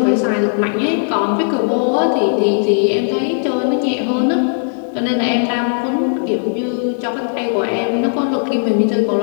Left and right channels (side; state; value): right; silent; digital silence